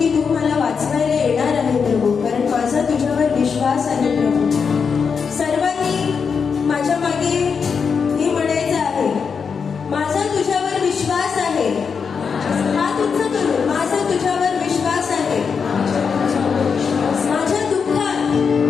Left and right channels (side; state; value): right; quieter; 6.0 dB